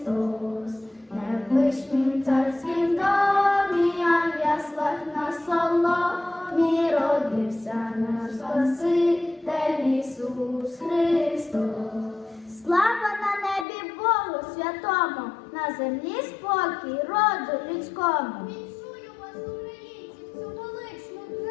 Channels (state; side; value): drops out; right; at 13.7 s